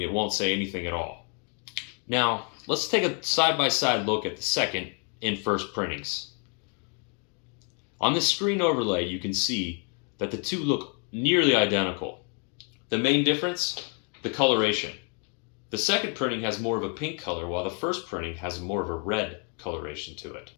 it won't say anything at all. Now, let's take a side-by-side look at the second and first printings. On this screen overlay, you can see that the two look nearly identical. The main difference? The coloration. The second printing has more of a pink color, while the first printing has more of a red coloration to it.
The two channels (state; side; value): quieter; right; 38.9 dB